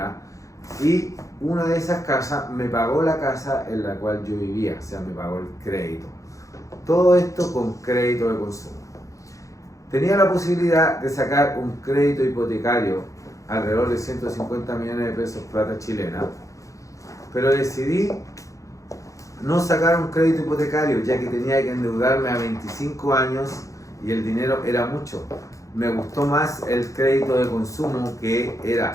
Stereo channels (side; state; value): right; late; 0.16 ms